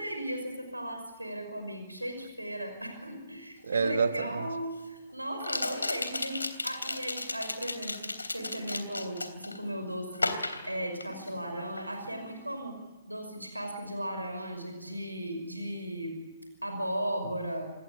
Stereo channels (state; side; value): inverted; both; correlation -0.83